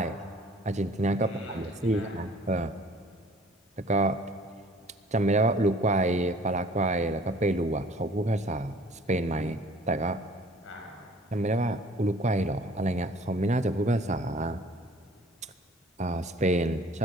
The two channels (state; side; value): normal; both; correlation 0.51